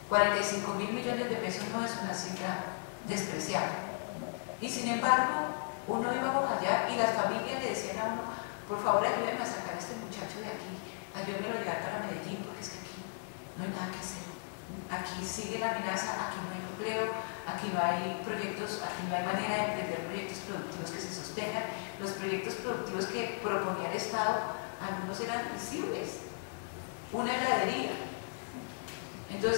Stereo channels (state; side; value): silent; right; digital silence